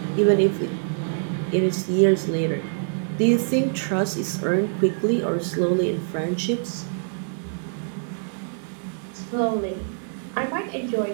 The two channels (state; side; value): silent; left; digital silence